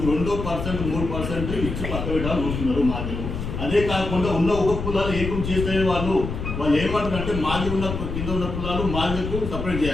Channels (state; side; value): noise; left; rumble, 5 dB below the sound